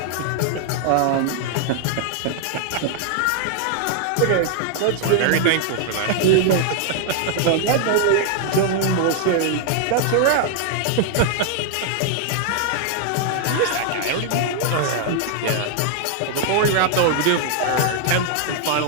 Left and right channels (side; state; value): both; different; correlation 0.00